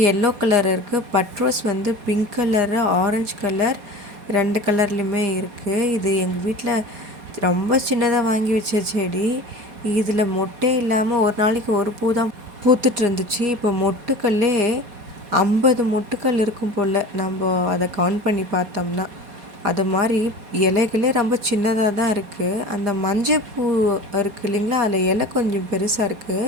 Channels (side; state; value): left; late; 4.2 ms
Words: எல்லோ கலர் இருக்குது. பட்ரோஸ் வந்து பிங்க் கலரு, ஆரஞ்சு கலர் 2 கலர்லேயுமே இருக்குது. இது எங்கள் வீட்டில் ரொம்ப சின்னதாக வாங்கி வச்ச செடி. இதில் மொட்டே இல்லாமல் ஒரு நாளைக்கு ஒரு பூ தான் பூத்துட்டு இருந்துச்சு. இப்போ மொட்டுக்கல்லே 50 மொட்டுக்கள் இருக்கும் போல், நம்ம அதை கவுண்ட் பண்ணி பார்த்தோம்னா. அது மாதிரி இலைகளே ரொம்ப சின்னதாக தான் இருக்குது. அந்த மஞ்சள் பூ இருக்குது இல்லைங்களா, அதில் இலை கொஞ்சம் பெருசாக